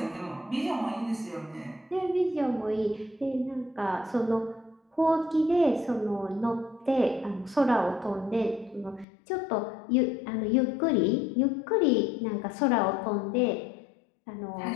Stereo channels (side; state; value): right; drops out; at 9.1 s